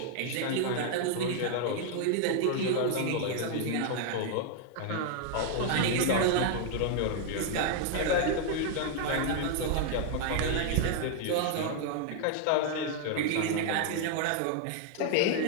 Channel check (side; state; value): both; different; correlation 0.00